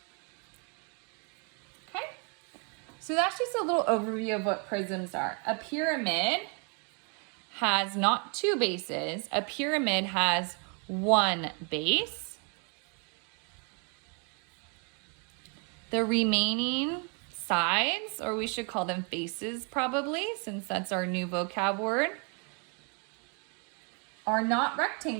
Okay? So that's just a little overview of what prisms are. A pyramid has not 2 bases. A pyramid has 1 base. The remaining sides, or we should call them faces probably, since that's our new vocab word, are not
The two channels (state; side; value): quieter; left; 37.0 dB